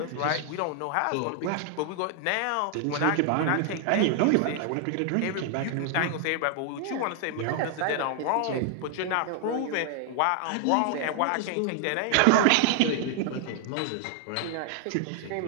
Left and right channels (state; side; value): different; both; correlation 0.00